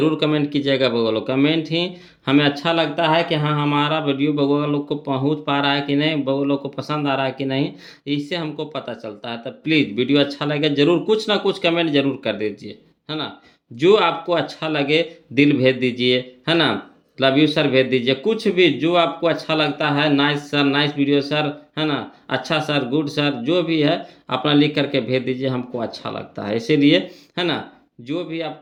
कमेंट कीजिएगा बोलो। कमेंट ही हमें अच्छा लगता है कि हाँ हमारा वीडियो बगोगा लोग को पहुंच पा रहा है कि नहीं, बगो लोग को पसंद आ रहा है कि नहीं, इससे हमको पता चलता है। तो प्लीज़ वीडियो अच्छा लगे जरूर कुछ ना कुछ कमेंट जरूर कर दीजिए, है ना। जो आपको अच्छा लगे दिल भेज दीजिए, है ना, लव यू सर भेज दीजिए, कुछ भी जो आपको अच्छा लगता है, nice sir, nice video sir, है ना, अच्छा सर, गुड सर, जो भी है अपना लिख करके भेज दीजिए, हमको अच्छा लगता है इसीलिए, है ना। जो भी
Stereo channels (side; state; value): both; identical; correlation 1.00